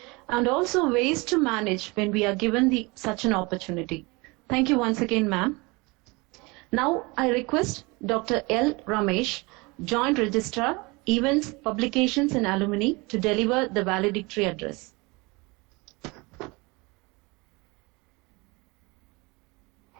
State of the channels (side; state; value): left; quieter; 25.9 dB